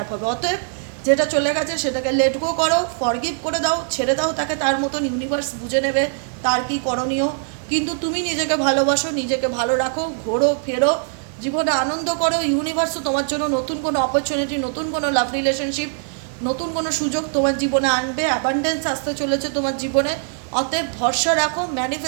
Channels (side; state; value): left; silent; digital silence